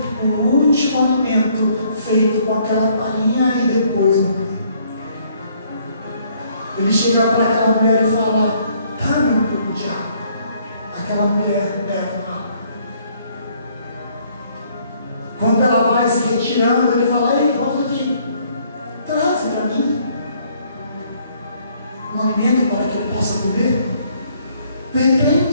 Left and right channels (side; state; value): both; inverted; correlation -0.65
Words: o último alimento feito com aquela farinha e depois morrer. Ele chega para aquela mulher e fala: dá-me um pouco de água. Aquela mulher leva água. Quando ela vai se retirando, ele fala: ei, volta aqui, traz para mim um alimento para que eu possa comer. De